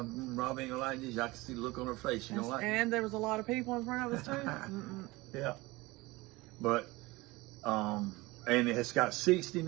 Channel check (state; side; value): quieter; left; 21.6 dB